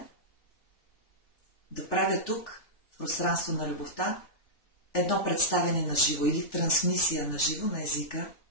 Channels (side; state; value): right; late; 3.4 ms